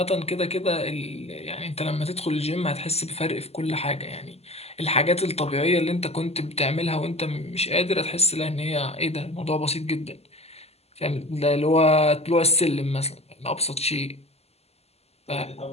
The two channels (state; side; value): late; right; 0.30 ms